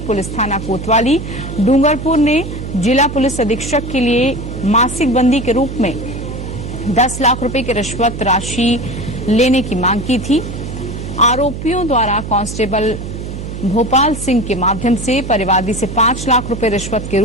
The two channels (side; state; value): right; noise; hum, 8 dB below the sound